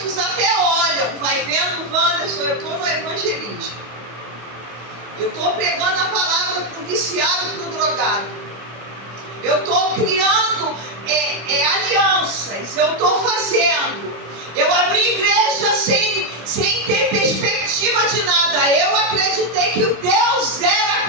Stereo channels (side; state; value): left; late; 25 ms